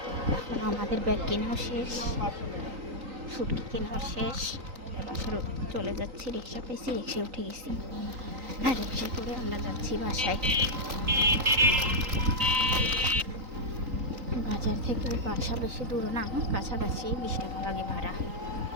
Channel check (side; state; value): left; late; 3.9 ms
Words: এখন আমাদের ব্যাগ কেনাও শেষ শুটকি কেনাও শেষ বাসার চলে যাচ্ছি রিক্সা পেয়েছি রিক্সায় উঠে গেছি আর রিক্সায় করে আমরা যাচ্ছি বাসায় বাজার থেকে বাসা বেশি দূর না কাছাকাছি 20 টাকা লাগে ভাড়া